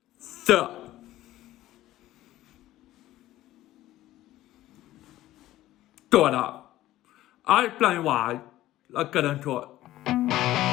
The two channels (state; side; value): quieter; right; 15.0 dB